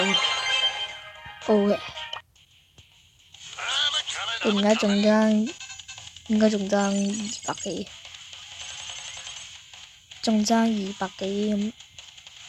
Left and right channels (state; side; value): identical; both; correlation 1.00